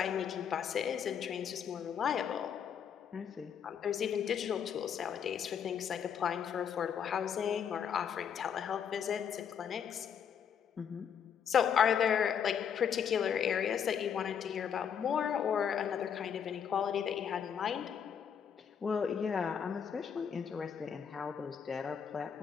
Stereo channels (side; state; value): right; quieter; 7.9 dB